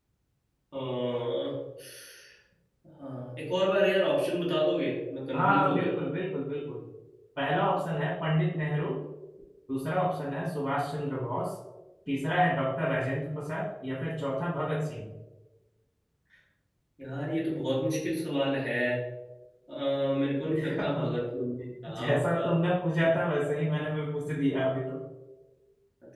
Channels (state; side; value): identical; both; correlation 1.00